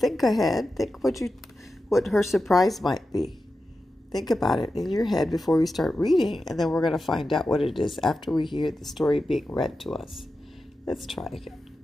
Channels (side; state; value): both; normal; correlation 0.91